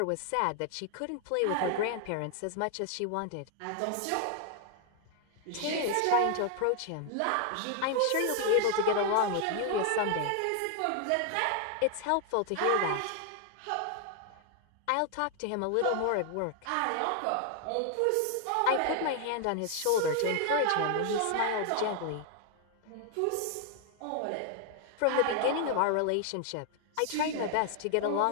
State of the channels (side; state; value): both; different; correlation 0.00